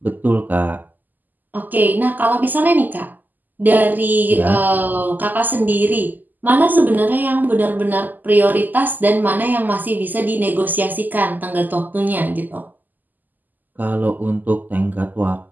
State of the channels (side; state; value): left; late; 0.085 ms